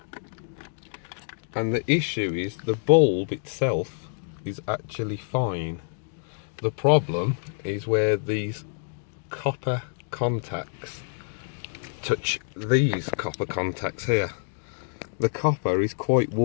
and the issue is the bulb itself is actually fine. The problem is where these copper contacts touch these copper contacts here. The copper is quite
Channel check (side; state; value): right; silent; digital silence